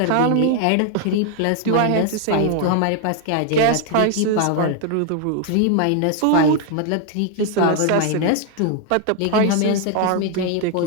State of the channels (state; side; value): different; both; correlation 0.00